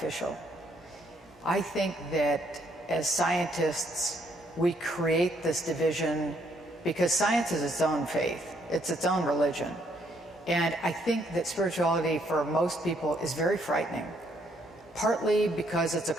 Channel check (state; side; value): normal; both; correlation 0.70